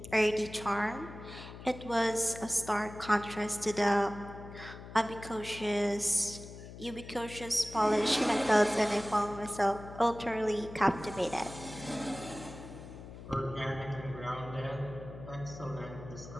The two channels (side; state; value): left; noise; hum, 14 dB below the sound